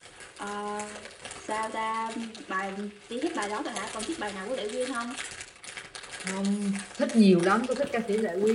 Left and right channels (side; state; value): both; identical; correlation 1.00